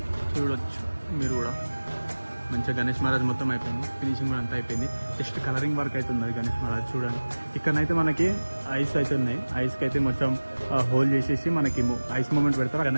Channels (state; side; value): inverted; both; correlation -1.00